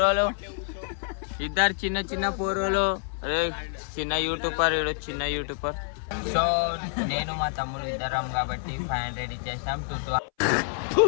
ఇద్దరు చిన్న చిన్న పోరోలు. అరే చిన్న యూట్యూబర్, ఇడు చిన్న యూట్యూబర్. సో నేను మా తమ్ముడు ఇద్దరం కాబట్టి 500 ఇచ్చేసాం. 200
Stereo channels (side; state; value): right; silent; 60 dB below the other